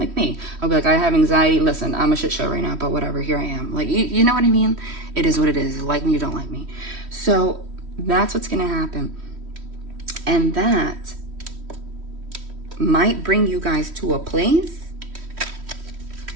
me, I'll be like, I have anxiety, listen, I'm a shit show right now, but whatever, here I am. Like, you know what I mean? It is what it is. Like me, you don't like me. So that's what's gonna happen. And that might bring you guys to a place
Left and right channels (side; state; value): left; late; 3.1 ms